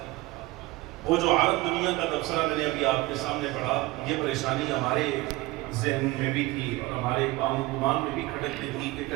وہ جو عرب دنیا کا تبصرہ میں نے ابھی آپ کے سامنے پڑھا، یہ پریشانی ہمارے ذہن میں بھی تھی اور ہمارے گمان میں بھی کھٹکتی تھی کہ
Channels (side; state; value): left; quieter; 20.5 dB